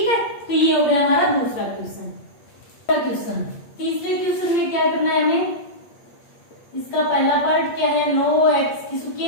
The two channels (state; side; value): late; right; 8.5 ms